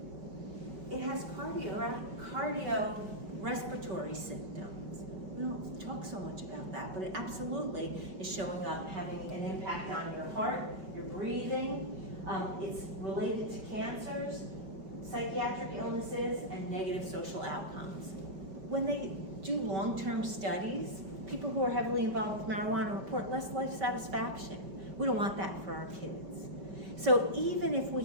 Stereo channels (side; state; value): left; late; 5.2 ms